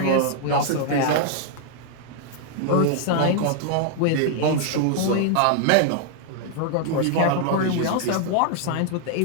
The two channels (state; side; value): different; both; correlation 0.00